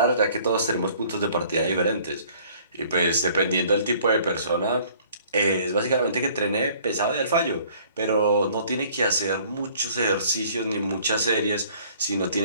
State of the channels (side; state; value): both; inverted; correlation -0.55